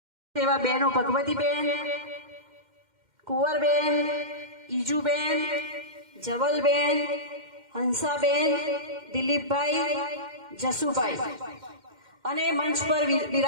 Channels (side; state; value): left; late; 2.1 ms